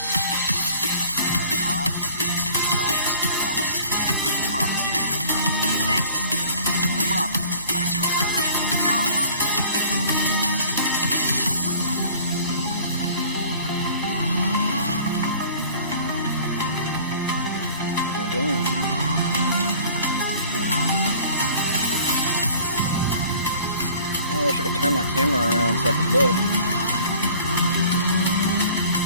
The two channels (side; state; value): both; inverted; correlation -0.50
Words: I wish I could turn my camera around so I could look.